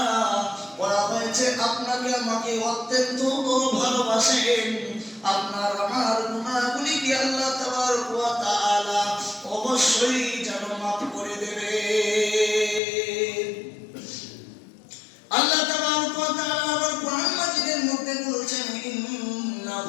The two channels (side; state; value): right; drops out; at 12.8 s